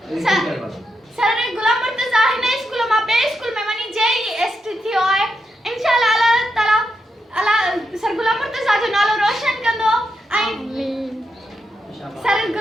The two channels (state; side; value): normal; both; correlation 0.84